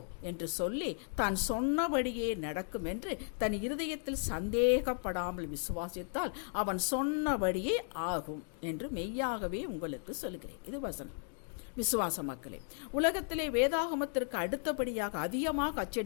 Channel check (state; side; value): silent; right; 54 dB below the other